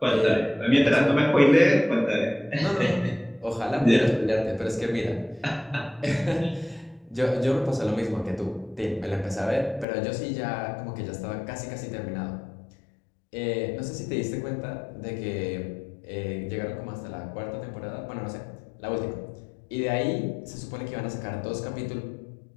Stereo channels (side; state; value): right; drops out; at 9.9 s